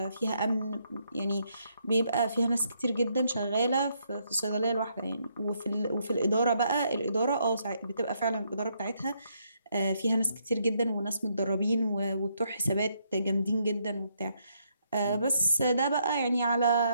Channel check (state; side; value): inverted; both; correlation -0.75